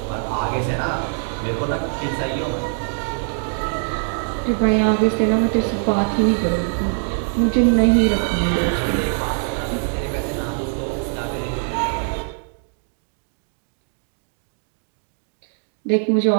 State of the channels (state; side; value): silent; left; 62 dB below the other